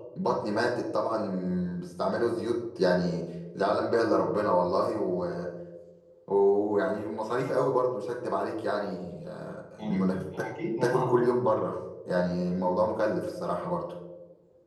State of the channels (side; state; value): both; identical; correlation 1.00